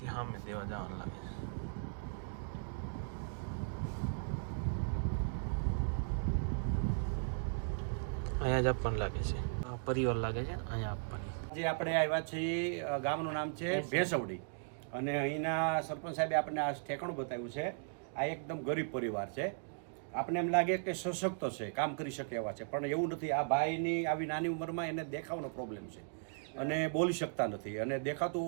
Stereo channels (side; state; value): left; silent; digital silence